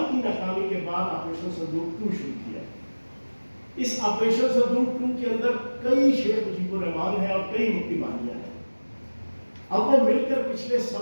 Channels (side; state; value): both; inverted; correlation -1.00